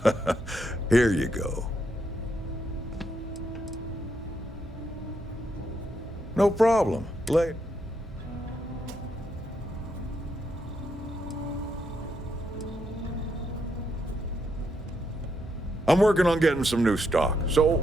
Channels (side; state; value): both; normal; correlation 0.79